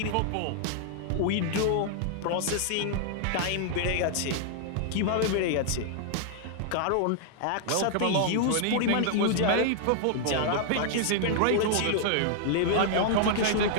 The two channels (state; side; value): different; both; correlation -0.01